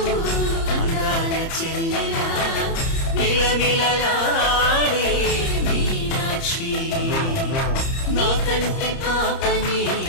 అందాల చెల్లెలా నిలనిలలాడే మీనాక్షి నా కంటి పాపని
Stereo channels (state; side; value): late; right; 30 ms